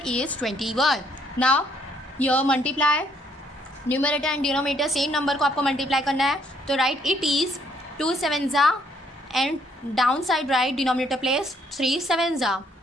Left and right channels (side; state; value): both; normal; correlation 0.68